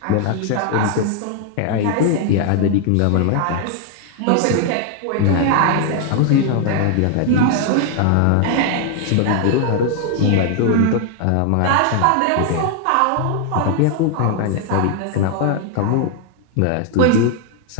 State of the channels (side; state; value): both; different; correlation 0.00